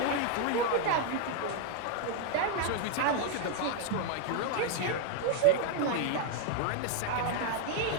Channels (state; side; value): different; both; correlation 0.01